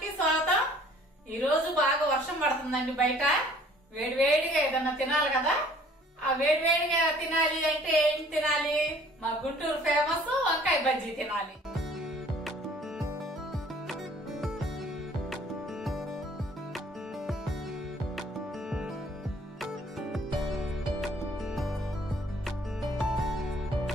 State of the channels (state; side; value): normal; both; correlation 0.55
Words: స్వాగతం. ఈ రోజు బాగా వర్షం పడుతుందండి బయట. వేడివేడిగా ఏదన్నా తినాలి కదా. ఆ వేడివేడిగా తినాలి అంటే ఏం తినాలి? మా గుంటూరు ఫేమస్ వంకాయ బజ్జీ తినాలి.